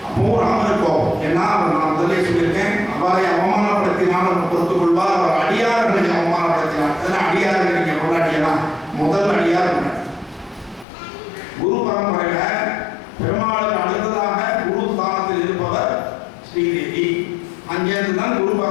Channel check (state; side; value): drops out; right; at 10.9 s